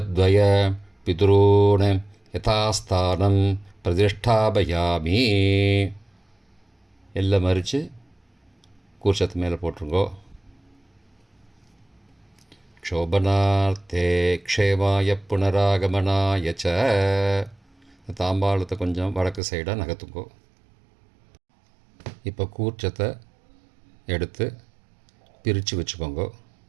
पितॄन् यथास्थानं प्रतिष्ठापयामि. எல்லாம் மறித்து கூர்ச்சத்து மேலே போட்டுருங்கோ. க்ஷோபனார்த்தே க்ஷேமாய புனராகமனாய ச. தாம்பாளத்தை கொஞ்சம் வடக்கு சைடாக நகர்த்துங்கோ. இப்போ கூர்ச்சத்தை எடுத்து பிரித்து வச்சுக்கோங்க.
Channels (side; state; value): left; drops out; at 19.4 s